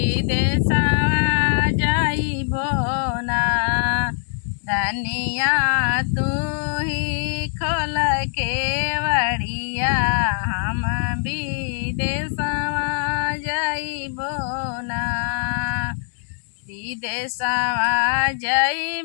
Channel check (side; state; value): right; silent; digital silence